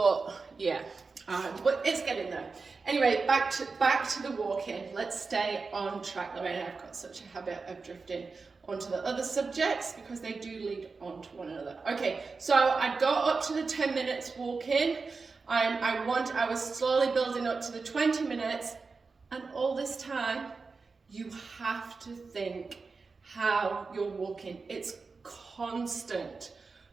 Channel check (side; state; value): left; quieter; 4.4 dB